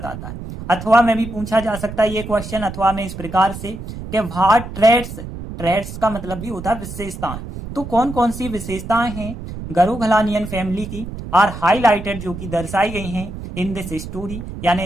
है, अथवा में भी पूछा जा सकता है ये क्वेश्चन अथवा में इस प्रकार से कि व्हाट ट्रेड्स, ट्रेड्स का मतलब भी होता है विशेषताएं, तो कौन कौन सी विशेषताएं हैं गरुगलानियन फैमिली की आर हाईलाइटेड, जो कि दर्शाई गई हैं इन दिस स्टोरी यानी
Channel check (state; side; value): noise; right; rumble, 10 dB below the sound